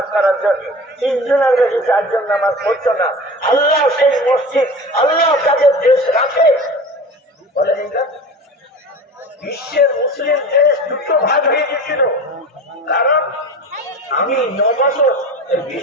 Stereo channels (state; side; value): normal; both; correlation 0.35